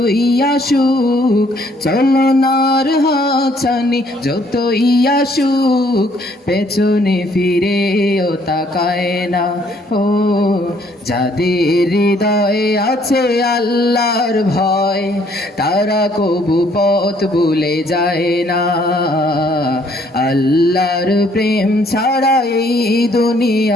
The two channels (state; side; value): normal; both; correlation 0.64